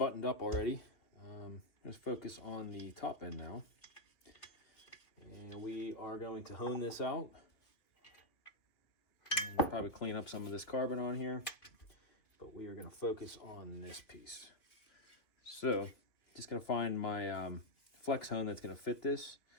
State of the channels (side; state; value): right; late; 2.8 ms